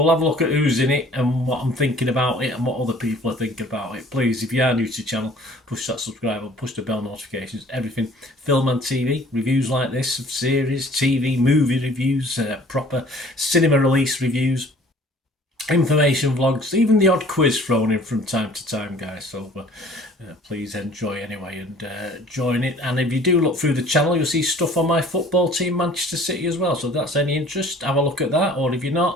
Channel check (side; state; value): both; normal; correlation 0.52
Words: we'll have a look at who's in it and what I'm thinking about it and what other people are thinking about it. Please, if you are new to the channel, push that subscribe button, push the bell notifications, everything. Film and TV, reviews like this of series, TV, movie reviews, proper cinema release reviews, information vlogs, even the odd quiz thrown in from time to time, guys. So please enjoy anyway and join it. And if you do look through the channel, you'll see stuff on my football team, Manchester City, as well. So if that's any interest, have a look at that. Or if you're